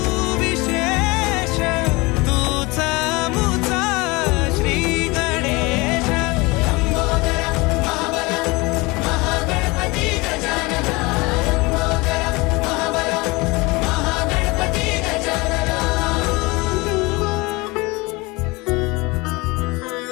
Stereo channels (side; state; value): right; quieter; 24.3 dB